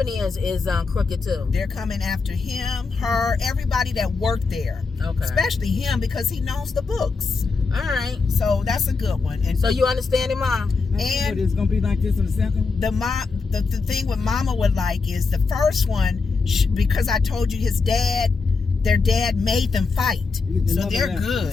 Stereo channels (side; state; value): right; quieter; 4.4 dB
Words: is crooked too. They're coming after him, her, everybody that worked there. Okay. Especially him because he knows the books. All right. So that's a good one. And so you understand it, Mom? And it's gonna be like this in the second one? The thing what Mama would like is the first one, because I told you their dad made them fight. So they're good.